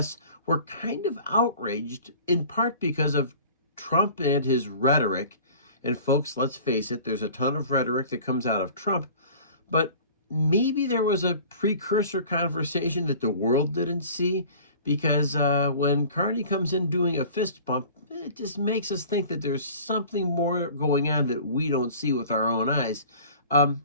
were kind of outraged, in part because of Trump and his rhetoric. And folks, let's face it, there's a ton of rhetoric that comes out of Trump, but maybe there was a precursor conversation that the world didn't see, because when Carney comes in doing a fist bump, it just makes us think that there's something more going on that we don't see with our own eyes.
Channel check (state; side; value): inverted; both; correlation -0.45